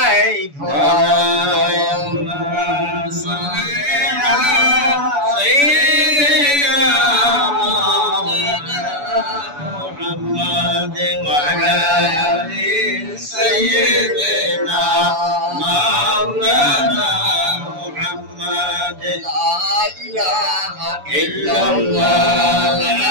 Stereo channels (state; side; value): late; left; 7.0 ms